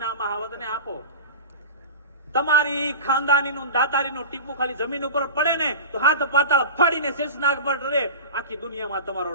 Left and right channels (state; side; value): inverted; both; correlation -0.32